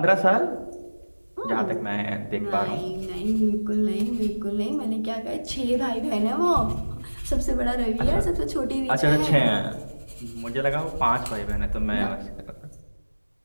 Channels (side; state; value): both; inverted; correlation -1.00